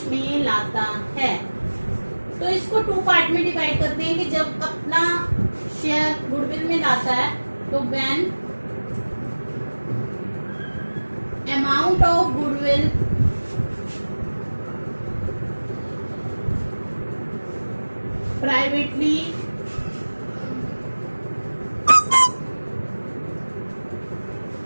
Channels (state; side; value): inverted; both; correlation -1.00